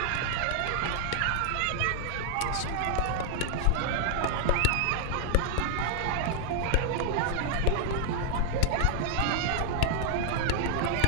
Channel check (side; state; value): both; different; correlation 0.00